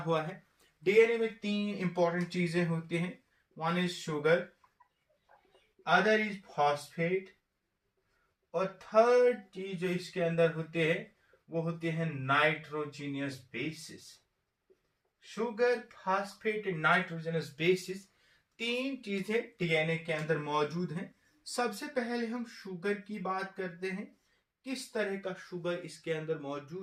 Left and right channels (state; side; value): identical; both; correlation 1.00